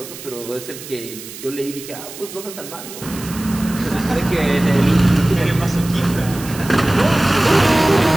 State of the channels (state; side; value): noise; right; hiss, 14 dB below the sound